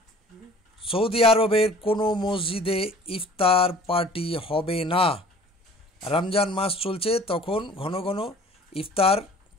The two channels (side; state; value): both; normal; correlation 0.49